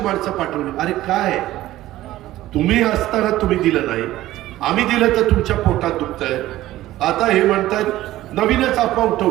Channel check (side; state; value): left; quieter; 15.3 dB